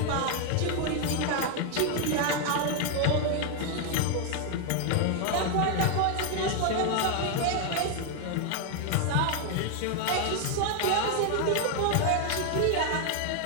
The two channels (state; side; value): different; both; correlation 0.01